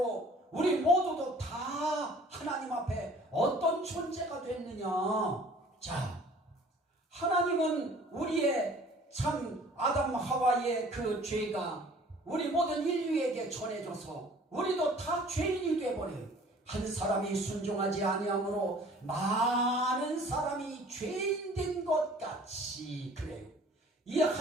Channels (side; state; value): both; normal; correlation 0.51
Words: 우리 모두도 다 하나님 앞에 어떤 존재가 됐느냐? 자, 하나님은 우리의 참 아담 하와의 그 죄가 우리 모든 인류에게 전해져서 우리도 다 죄인이 되어버려요. 한 사람이 순종하지 아니함으로 많은 사람이 죄인 된 것 같이 그래요. 이